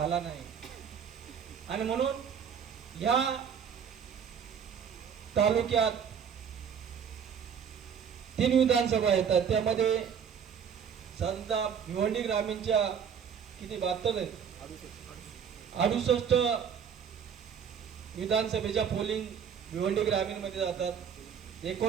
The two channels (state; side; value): quieter; left; 7.5 dB